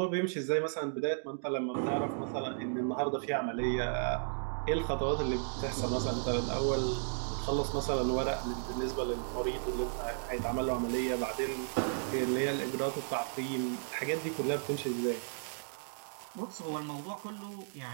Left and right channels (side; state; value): left; silent; digital silence